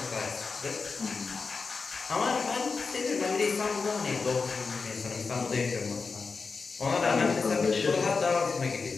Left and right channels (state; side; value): quieter; right; 4.7 dB